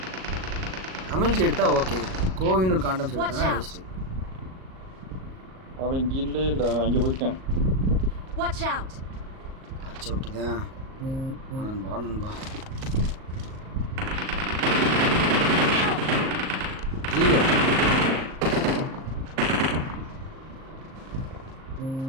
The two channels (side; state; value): left; late; 38 ms